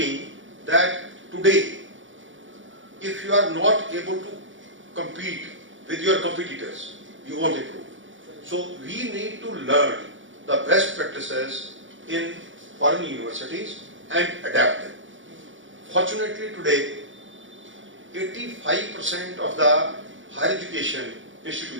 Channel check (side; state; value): left; late; 0.56 ms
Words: that today, if you are not able to compete with your competitors, you won't improve. So we need to learn the best practices in foreign universities and adapt them. Fortunately today, 85% of the higher education